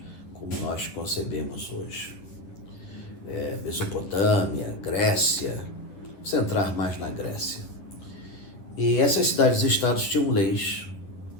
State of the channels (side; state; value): right; late; 10 ms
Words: como nós concebemos hoje. Mesopotâmia, Grécia, vamos entrar mais na Grécia. E essas cidades-estados tinham leis